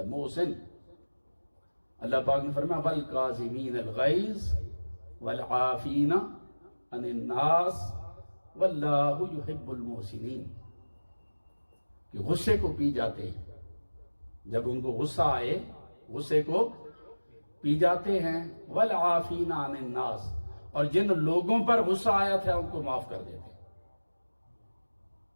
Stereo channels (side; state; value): both; inverted; correlation -1.00